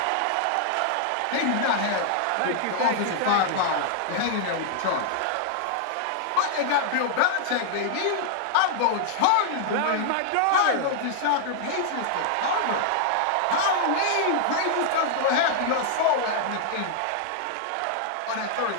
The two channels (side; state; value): both; different; correlation -0.01